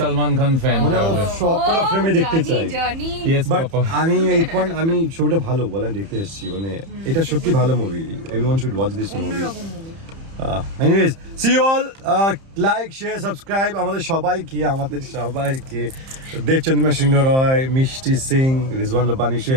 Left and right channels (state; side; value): late; left; 30 ms